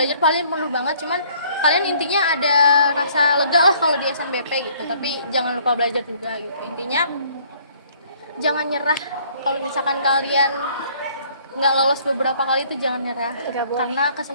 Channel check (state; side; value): inverted; both; correlation -0.60